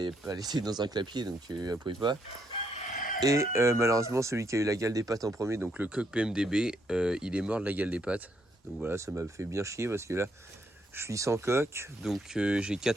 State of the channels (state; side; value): normal; both; correlation 0.75